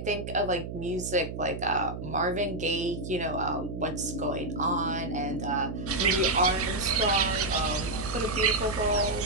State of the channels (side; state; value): right; noise; hum, 7 dB below the sound